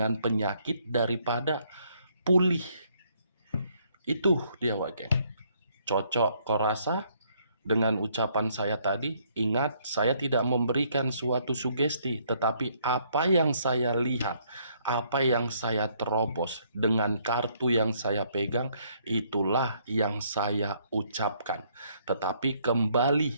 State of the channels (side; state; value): both; inverted; correlation -0.68